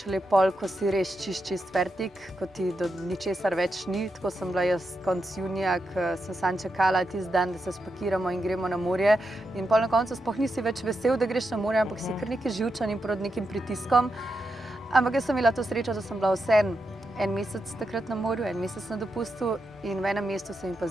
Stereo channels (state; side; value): normal; both; correlation 0.86